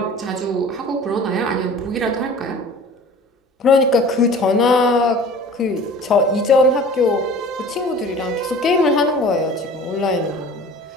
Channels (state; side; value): normal; both; correlation 0.44